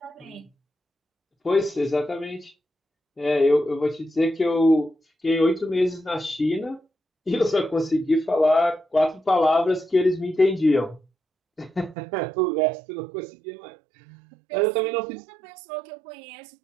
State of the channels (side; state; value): left; drops out; at 12.0 s